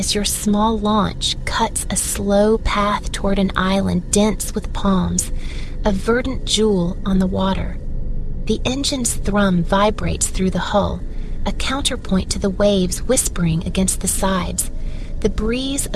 your small launch cuts a slow path toward an island dense with palms, a verdant jewel on the water. The engine's thrum vibrates through the hull, a counterpoint to the waves whispering against the sides, the breeze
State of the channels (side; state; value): both; identical; correlation 1.00